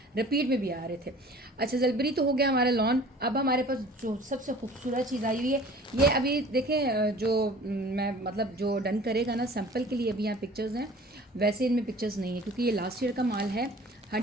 रिपीट में भी आ रहे थे। अच्छा, जलबेरी तो हो गया हमारा लॉन। अब हमारे पास जो सबसे खूबसूरत चीज़ आई हुई है, ये अभी देखें जो मैं मतलब जो डन करेगा ना सैम्पल के लिए अभी यहाँ पिक्चर्स हैं, वैसे इनमें पिक्चर्स नहीं है क्योंकि ये लास्ट ईयर का माल है।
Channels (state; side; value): normal; both; correlation 0.47